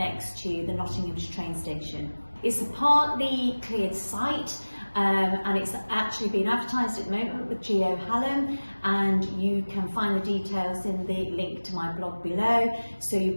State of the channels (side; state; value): both; inverted; correlation -1.00